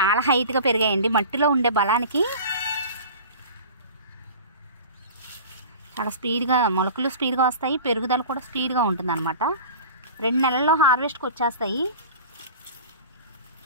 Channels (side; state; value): both; inverted; correlation -0.37